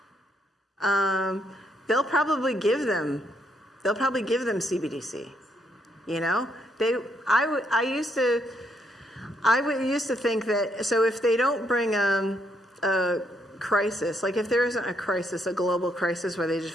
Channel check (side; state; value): both; normal; correlation 0.74